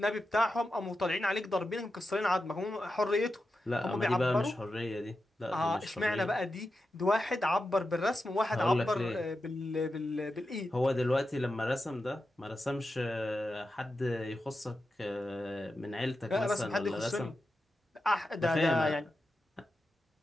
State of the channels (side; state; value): both; normal; correlation 0.90